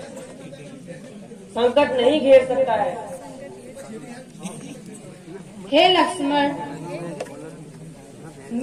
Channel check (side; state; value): both; identical; correlation 1.00